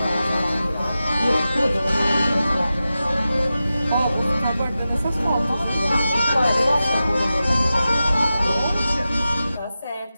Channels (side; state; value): both; inverted; correlation -0.93